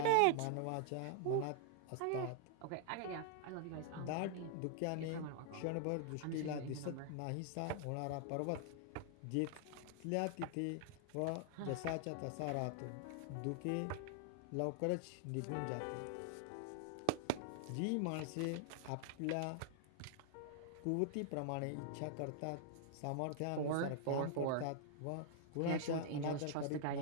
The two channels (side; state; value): both; different; correlation -0.01